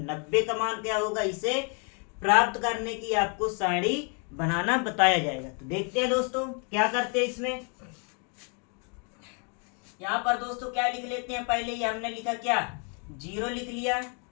का मान क्या होगा। इसे प्राप्त करने की आपको सारणी बनाना बताया जाएगा। तो देखते हैं दोस्तों क्या करते हैं इसमें। यहाँ पर दोस्तों क्या लिख लेते हैं, पहले ये हमने लिखा क्या, 0 लिख लिया।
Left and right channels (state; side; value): quieter; right; 37.6 dB